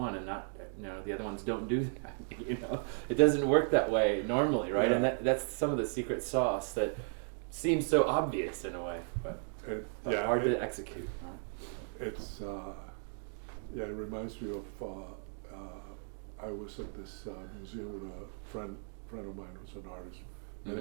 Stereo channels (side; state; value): left; silent; 54 dB below the other